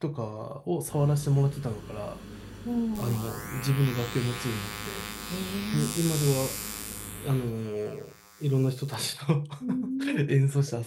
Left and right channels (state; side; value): identical; both; correlation 1.00